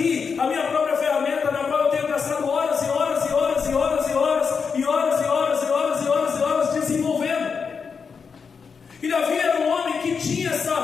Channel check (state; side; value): quieter; right; 5.7 dB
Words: a minha própria ferramenta, na qual eu tenho gastado horas e horas e horas e horas e horas e horas e horas e horas e horas e horas desenvolvendo. E Davi era um homem que tinha